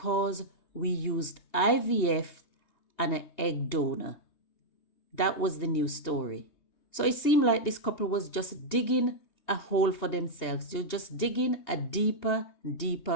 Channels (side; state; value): right; late; 2.8 ms